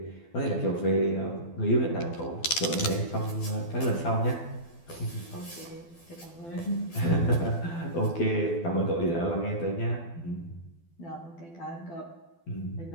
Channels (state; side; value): late; right; 12 ms